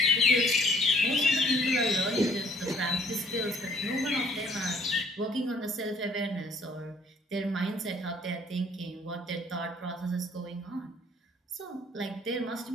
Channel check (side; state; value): both; normal; correlation 0.59